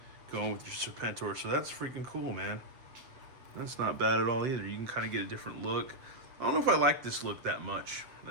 going with your Serpentor, so that's freaking cool, man. That's not bad at all either. You can kind of get a different look. I don't know if I like this look that much.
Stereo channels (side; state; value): left; late; 7.5 ms